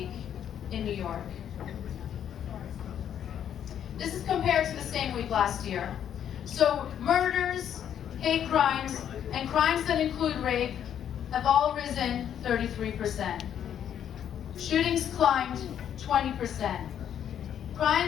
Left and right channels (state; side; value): quieter; right; 9.5 dB